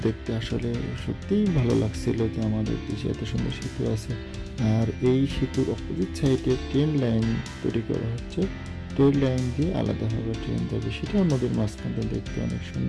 দেখতে আসলে সত্যিই ভালো লাগছিল যে আমাদের দেশে এত সুন্দর সেতু আছে। আর এই সেতুর অপোজিট সাইডে ট্রেন লাইন তৈরি করা হচ্ছে। ট্রেন লাইন দিয়ে আলাদাভাবে ট্রেন যাবে, সেটাও নদীর মাঝখানে দেখতে অনেক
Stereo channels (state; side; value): identical; both; correlation 1.00